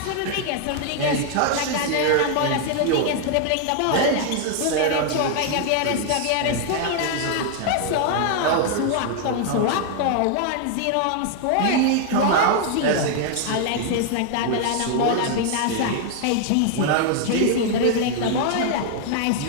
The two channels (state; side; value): different; both; correlation 0.00